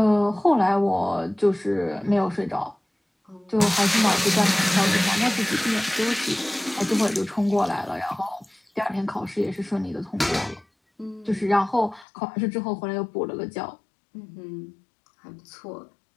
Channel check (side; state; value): right; drops out; at 12.1 s